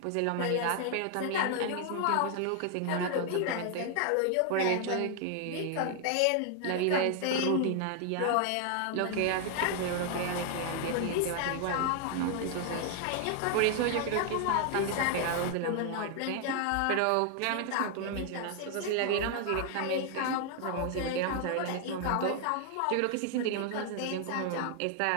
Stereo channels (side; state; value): both; different; correlation 0.00